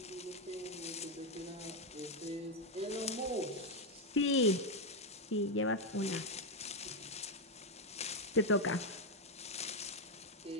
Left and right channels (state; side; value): normal; both; correlation 0.04